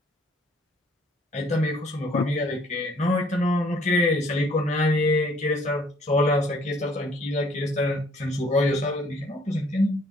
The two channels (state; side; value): normal; both; correlation 0.61